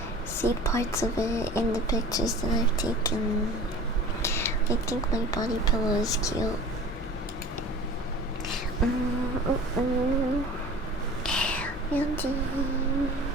see parts of it in the pictures that I've taken. I think my body pillow is cute. Beauty.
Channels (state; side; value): normal; both; correlation 0.41